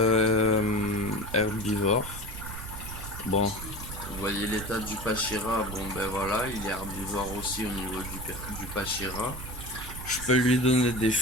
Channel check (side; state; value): right; noise; rumble, 10 dB below the sound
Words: herbivores. Bon, vous voyez l'état du Pachira, bon ben voilà, il est herbivore aussi au niveau du Pachira. Je peux lui donner des